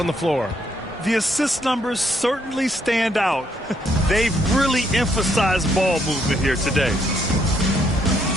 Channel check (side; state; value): both; normal; correlation 0.72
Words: the floor. The assist numbers certainly stand out. They've really emphasized ball movement here today.